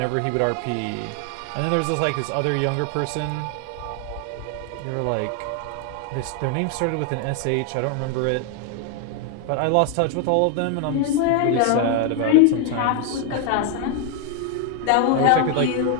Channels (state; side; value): different; both; correlation 0.01